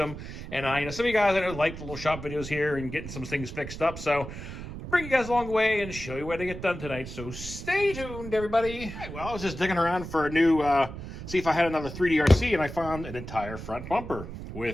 And some of you guys I know like the little shop videos here and getting some things fixed up. So I'll bring you guys along the way and show you what they get done tonight. So stay tuned, everybody. All right, well, I was just digging around for a new, see if I had another 3D RC, and I found an entire front bumper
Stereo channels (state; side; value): noise; right; rumble, 10 dB below the sound